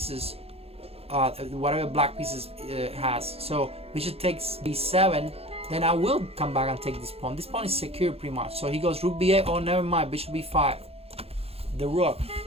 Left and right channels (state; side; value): late; left; 0.29 ms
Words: whatever black pieces has. So bishop takes b7. Then I will come back and take this pawn. This pawn is secure pretty much. So he goes rook b8. Oh, never mind. Bishop b5. The rook.